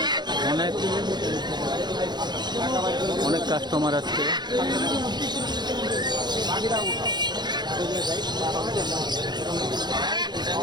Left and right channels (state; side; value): late; left; 0.21 ms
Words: অনেক কাস্টমার আসছে।